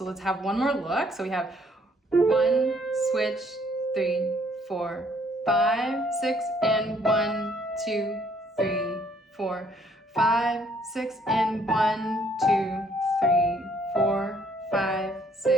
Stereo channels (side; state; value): both; normal; correlation 0.65